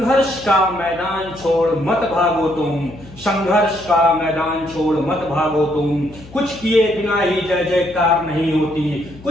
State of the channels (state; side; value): noise; left; hum, 20 dB below the sound